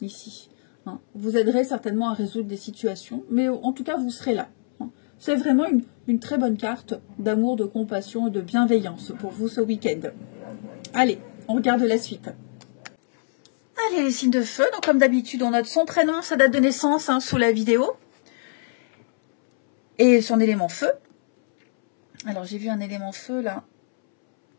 Hein. Vous aiderez certainement à résoudre des situations, mais en tout cas vous serez là. Hein. C'est vraiment une très bonne carte d'amour, de compassion et de bienveillance pour vous ce week-end. Allez, on regarde la suite. Allez, les signes de feu, donc comme d'habitude on note son prénom, sa date de naissance hein, sous la vidéo. Et son élément feu. Alors, j'ai vu un élément feu, là.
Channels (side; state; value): right; silent; 63 dB below the other